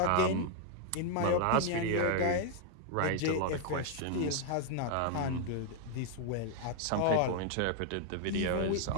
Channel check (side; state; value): both; different; correlation 0.00